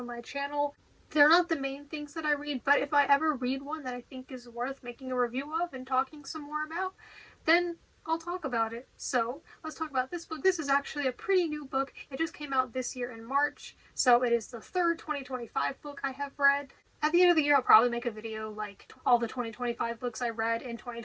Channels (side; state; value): both; identical; correlation 1.00